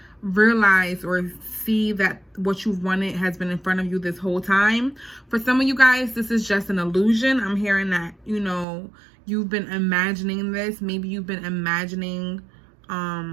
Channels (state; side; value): drops out; left; at 8.7 s